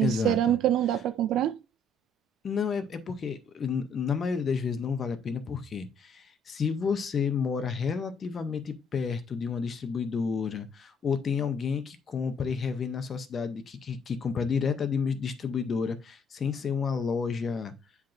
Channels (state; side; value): normal; both; correlation 0.64